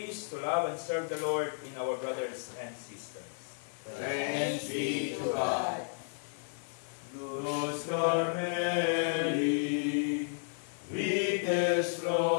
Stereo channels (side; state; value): right; silent; 56 dB below the other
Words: to love and serve the Lord in our brothers and sisters. Thanks be to God. Luz Carmeli, vites